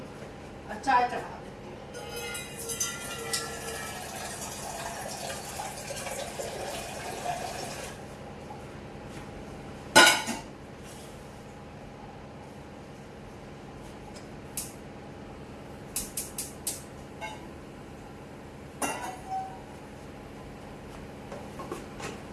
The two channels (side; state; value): both; identical; correlation 1.00